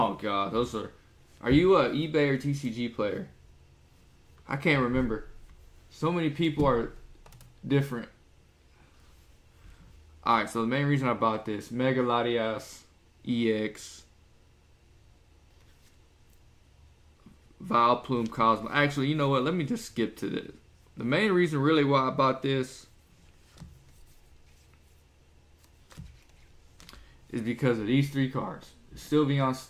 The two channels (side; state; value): both; identical; correlation 1.00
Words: God. Those are... Are you a eBay or TCG player? I can't remember. So many people are different. Alright, so the main reason I bought this, Mega Latias EX, Vileplume Cosmo. Actually, you know what? Let me just skip to this. The main reason really why I bought this is because of these 3 cards. The Sylveon